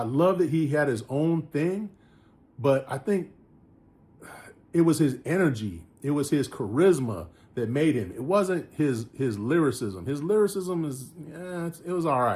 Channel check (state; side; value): identical; both; correlation 1.00